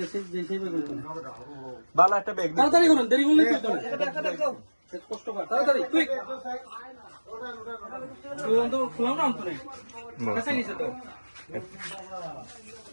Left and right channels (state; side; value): inverted; both; correlation -1.00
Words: সেই ব্যাগ দেন ভালো একটা ব্যাগ তাড়াতাড়ি করুন দেরি করলে কি হবে কষ্ট কর তাড়াতাড়ি কুইক তুই বন্ধ খুলাও না অন্তরে কাছে নিচে তো